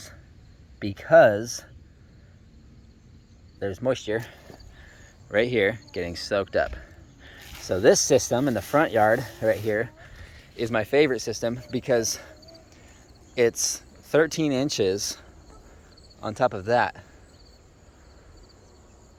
because there's moisture right here getting soaked up. So this system in the front yard right here is my favorite system because it's 13 inches on top of that.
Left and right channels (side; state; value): both; identical; correlation 1.00